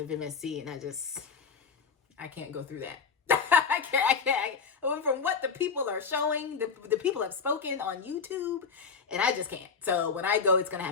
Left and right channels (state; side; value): quieter; right; 5.4 dB